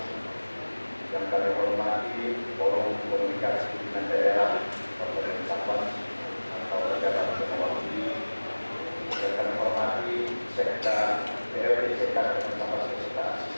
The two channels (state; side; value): inverted; both; correlation -1.00